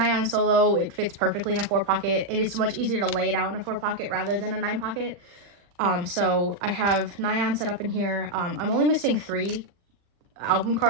solo, it fits perfectly in a 4-pocket. It is much easier to lay it out in a 4-pocket rather than a 9-pocket. So I have Nyan set up in here. I'm only missing 3 album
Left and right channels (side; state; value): left; late; 40 ms